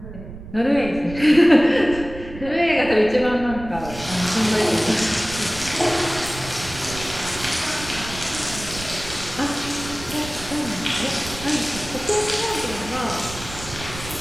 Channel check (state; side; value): noise; right; rumble, 13 dB below the sound